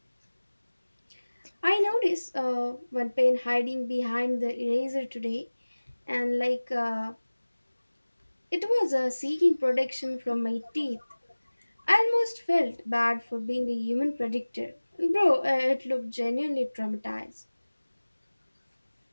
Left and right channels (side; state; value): both; inverted; correlation -1.00